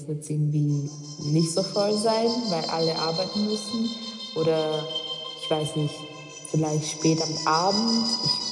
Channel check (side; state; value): both; identical; correlation 1.00